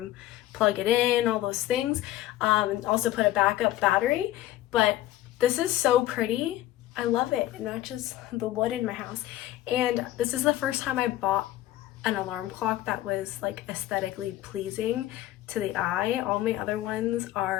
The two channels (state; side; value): quieter; right; 14.5 dB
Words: plug it in, all those things, and also put a backup battery. But this is so pretty. I love it. It matches the wood in my house. And this is the first time I bought an alarm clock that was like aesthetically pleasing to the eye. All my other ones